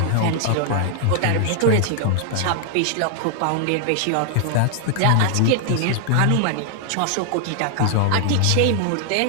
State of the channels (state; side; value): different; both; correlation 0.00